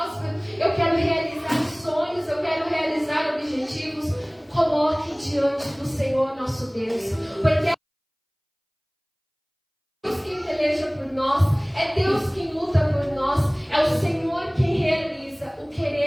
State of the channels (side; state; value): both; identical; correlation 1.00